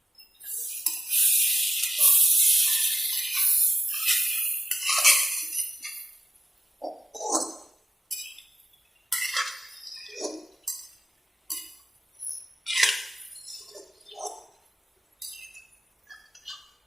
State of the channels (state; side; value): normal; both; correlation 0.92